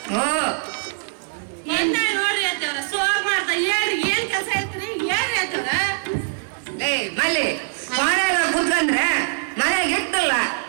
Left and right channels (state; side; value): silent; left; digital silence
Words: ಏನ್ ನೋಡ್ರಿ ಅತ್ತ ಸೋರ್ ಮಾಡ್ತಾ ಹೇಳ್ರಿ ಏನ್ ಕೆಲಸ ಐತ್ರಿ ಏನ್ ಆಯ್ತದ ಏ ಮಲ್ಲಿ ಮನೆಯಾಗ ಕುತ್ಕೊಂಡ್ರೆ ಮನೆಗೆ ಇಟ್ಟಲ್ಲ